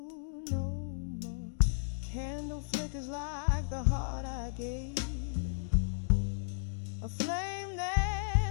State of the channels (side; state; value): right; silent; digital silence